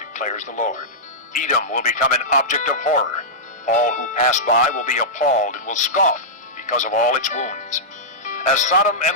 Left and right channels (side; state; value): both; normal; correlation -0.12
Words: declares the Lord. Edom will become an object of horror. All who pass by will be appalled and will scoff because of all its wounds. As Sodom